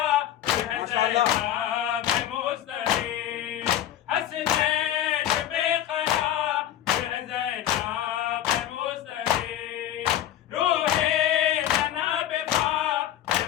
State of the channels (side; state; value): right; quieter; 11.9 dB